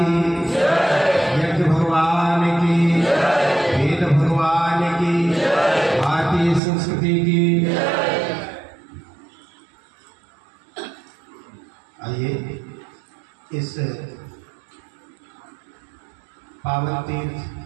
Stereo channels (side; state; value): left; drops out; at 6.6 s